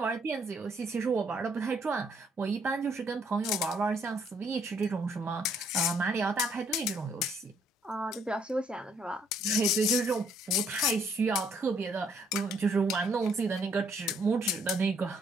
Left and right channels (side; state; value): both; normal; correlation 0.67